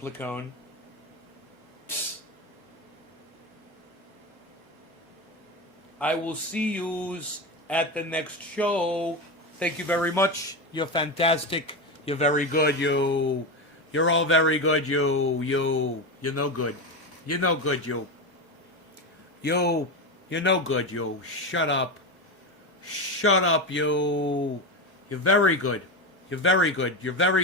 Placone. Psst. I will see you at the next show. Thank you very much. You're fantastic. You're very good. You're all very good. You're no good. You're no good. You're no good. Shut up. Shut up. You're very good. You're very good. You're very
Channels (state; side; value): normal; both; correlation 0.17